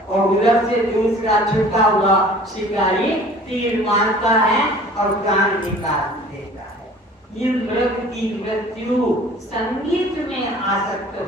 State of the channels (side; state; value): both; normal; correlation 0.47